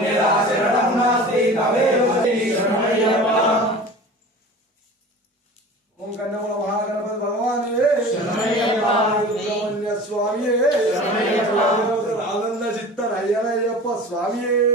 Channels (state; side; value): normal; both; correlation 0.39